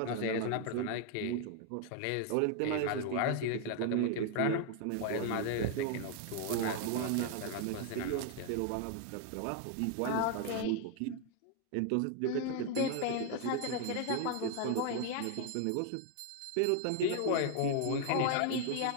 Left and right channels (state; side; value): different; both; correlation 0.00